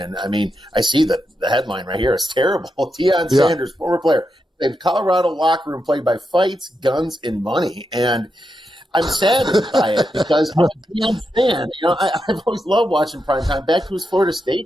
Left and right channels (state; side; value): normal; both; correlation 0.86